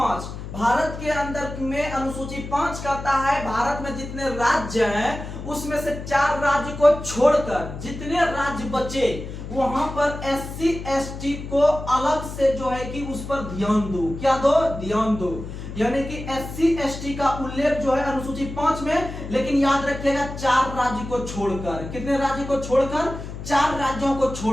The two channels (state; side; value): noise; left; hum, 9 dB below the sound